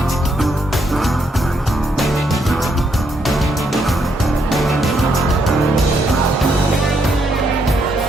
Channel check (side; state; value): both; normal; correlation 0.76